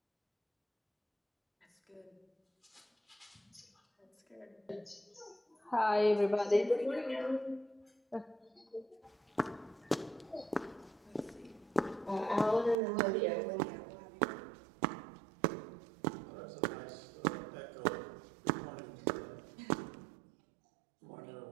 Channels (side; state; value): left; drops out; at 12.8 s